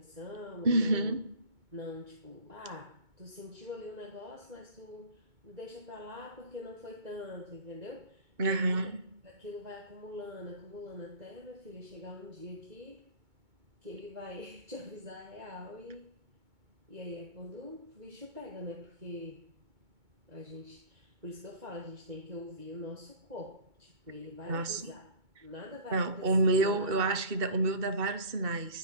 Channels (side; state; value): left; late; 2.2 ms